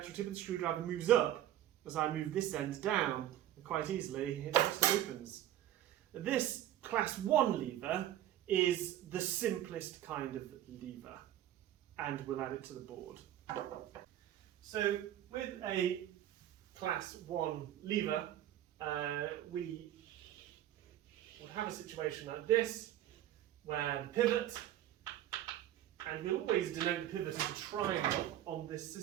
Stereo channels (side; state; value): left; quieter; 12.5 dB